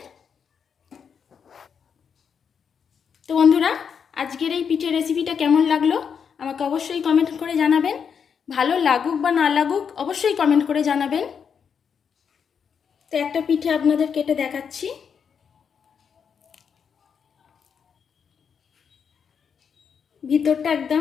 তো বন্ধুরা, আজকের এই পিঠের রেসিপিটা কেমন লাগলো আমাকে অবশ্যই কমেন্ট করে জানাবেন। ভালো লাগুক বা না লাগুক অবশ্যই কমেন্ট করে জানাবেন। তো একটা পিঠে আপনাদের কেটে দেখাচ্ছি। ভিতরটা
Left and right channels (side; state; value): right; quieter; 6.9 dB